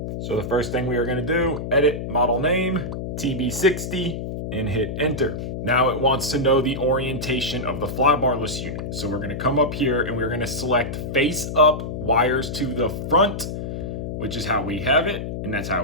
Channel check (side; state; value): left; noise; hum, 5 dB below the sound